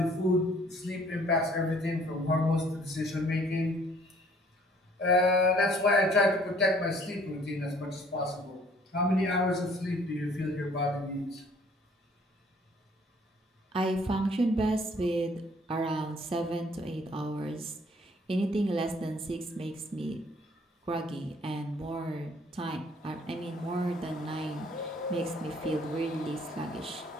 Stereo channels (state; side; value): normal; both; correlation 0.59